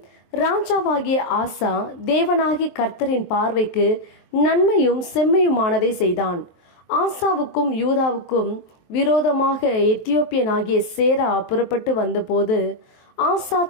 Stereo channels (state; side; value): late; right; 23 ms